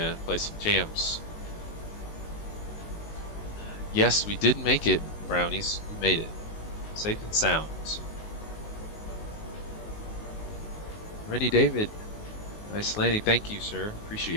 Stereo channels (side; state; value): right; late; 19 ms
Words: play some jams. Yes, we did make it, brownies. We made it. Safe and sound. Rennie David. Nice landing. Thank you, sir.